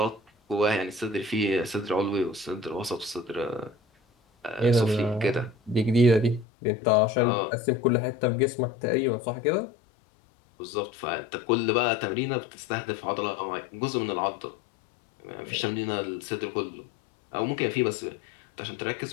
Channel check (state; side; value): drops out; right; at 6.5 s